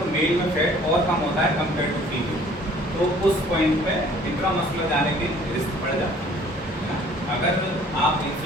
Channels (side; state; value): both; normal; correlation 0.54